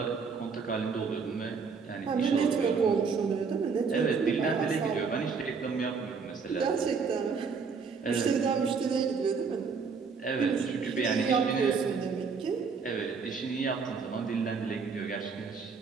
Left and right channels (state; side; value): quieter; left; 5.3 dB